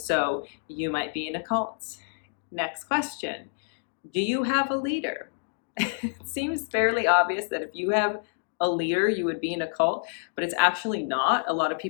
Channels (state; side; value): silent; right; digital silence